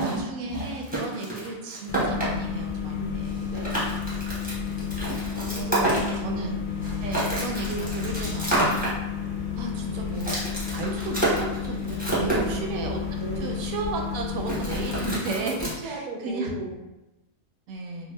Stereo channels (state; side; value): normal; both; correlation 0.03